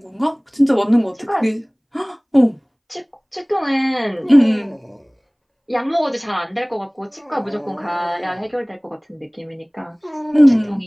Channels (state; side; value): identical; both; correlation 1.00